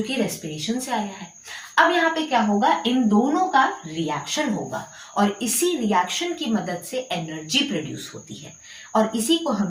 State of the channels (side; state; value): both; identical; correlation 1.00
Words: कि रेस्पिरेशन से आया है। अब यहाँ पे क्या होगा? इन दोनों का रिएक्शन होगा और इसी रिएक्शन की मदद से एनर्जी प्रोड्यूस होती है, और इसी को